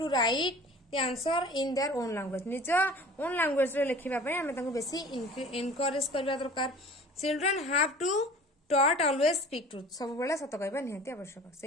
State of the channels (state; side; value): normal; both; correlation 0.44